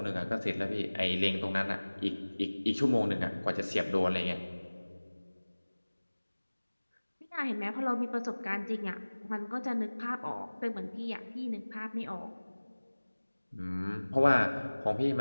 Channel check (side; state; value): both; inverted; correlation -1.00